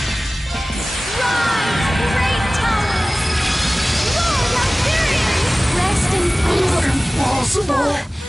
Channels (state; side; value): normal; both; correlation 0.98